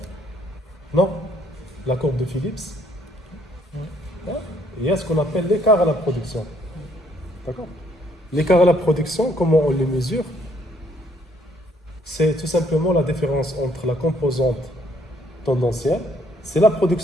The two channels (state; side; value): normal; both; correlation 0.66